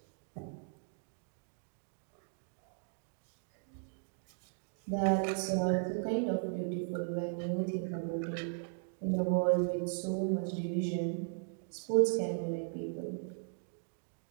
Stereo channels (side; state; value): left; silent; digital silence